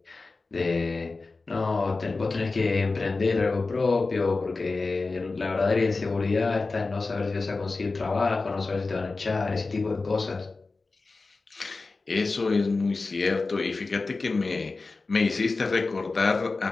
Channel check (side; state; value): right; quieter; 3.8 dB